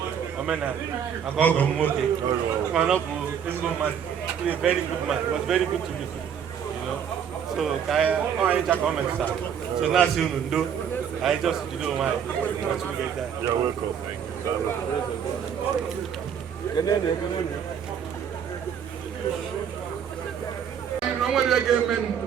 Omena, I go go moke. Man up, this man, he's a very good man. He was very good to me, you know. So I just comment, sir. So now soon do. I just do my. You're welcome.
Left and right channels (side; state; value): left; quieter; 8.1 dB